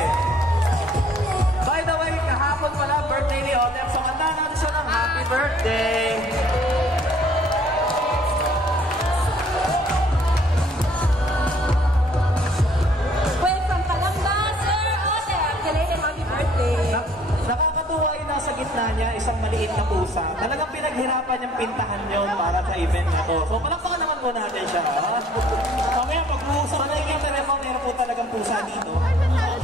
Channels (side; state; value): both; normal; correlation 0.57